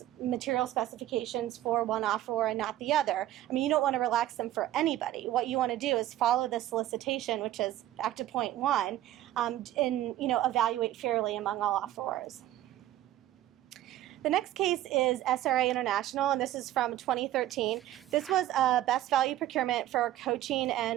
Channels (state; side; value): quieter; left; 13.5 dB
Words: material specifications for one offeror and not the other. I mean, you don't want to relax them for anybody. What you want to do is follow the solicitation, which is back to point 1, and, evaluate fairly among all offerors. The next case is SRA International, and this is from 2013. This was a best value procurement for coaching